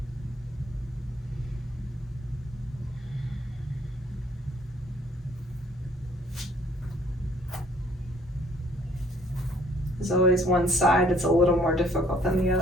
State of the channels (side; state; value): both; normal; correlation 0.61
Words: There's always one side that's a little more difficult than the